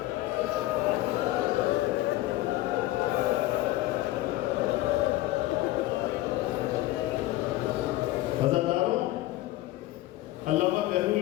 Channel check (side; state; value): right; quieter; 16.8 dB